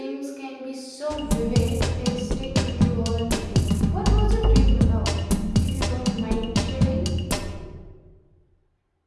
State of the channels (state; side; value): identical; both; correlation 1.00